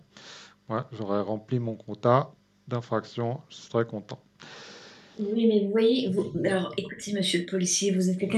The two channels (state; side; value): identical; both; correlation 1.00